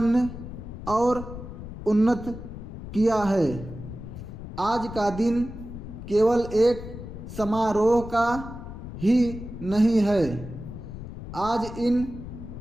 और उन्नत किया है। आज का दिन केवल एक समारोह का ही नहीं है। आज इन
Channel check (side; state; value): left; noise; rumble, 11 dB below the sound